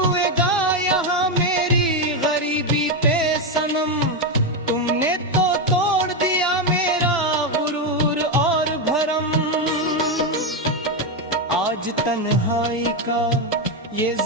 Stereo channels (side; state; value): both; normal; correlation 0.07